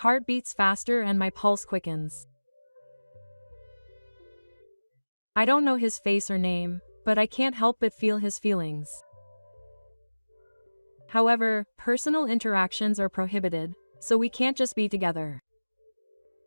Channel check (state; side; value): inverted; both; correlation -1.00